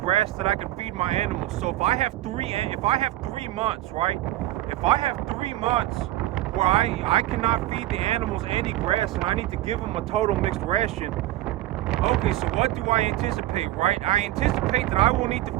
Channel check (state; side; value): quieter; left; 15.0 dB